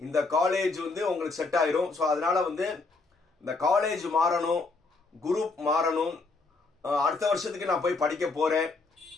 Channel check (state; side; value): quieter; right; 3.8 dB